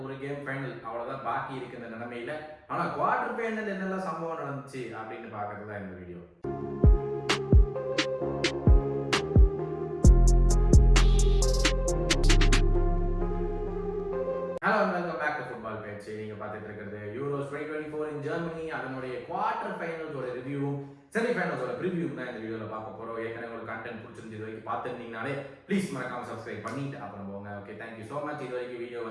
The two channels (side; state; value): both; identical; correlation 1.00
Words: ஒரு கேம் ஃபைனல் அவ்வளோதான் பாக்கி இருக்கு இந்த நிலைமையில. ஆனால் குவார்டர் ஃபைனல் என்னெல்லாம் சம்பவம் நடந்துச்சு அப்படின்னு பார்க்கறது தான் இந்த video. Hello, welcome back to football பேச்சு. நீங்க பார்த்துட்டு இருக்கிறது யூரோஸ் 2024 இன் ஜெர்மனி. அதனுடைய குவார்டர் ஃபைனல்ஸோட ரிவ்யூவும் செமிஃபைனல்ஸோட ப்ரிவியூவும் தான் இந்த வீடியோவில் பார்க்க போகிறோம். ஏற்கனவே உங்களுக்கு கண்டென்ட் பிடிச்சிருந்து இது வரைக்கும் பார்த்துருந்தீங்கனாலே ப்ளீஸ் மறக்காம சப்ஸ்கிரைப் பண்ணிட்டு அப்புறம் போங்க. Okay, thank you so much. இது வரைக்கும் வீடியோ